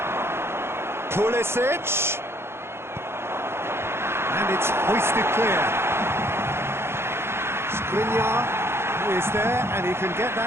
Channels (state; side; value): late; left; 0.12 ms